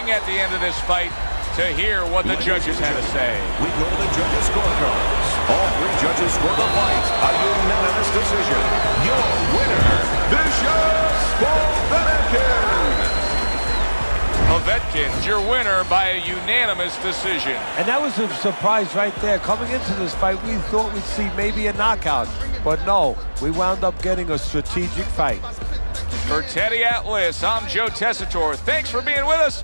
at the end of this fight to hear what the judges had to say. We go to the judges' scorecards. All three judges score the fight. A unanimous decision. Your winner, Vicious Povetkin. Povetkin's your winner by a unanimous decision. And that was a surprise right there. Coming into this fight, we thought we'd see maybe a knockout. But no, we wound up getting a strategic fight. For Teddy Atlas, I'm Joe Tessitore. Thanks for being with us.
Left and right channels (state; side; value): inverted; both; correlation -1.00